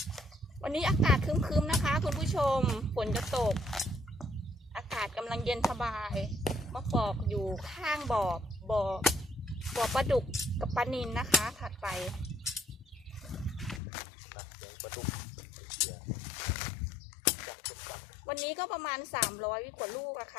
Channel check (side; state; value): right; drops out; at 13.8 s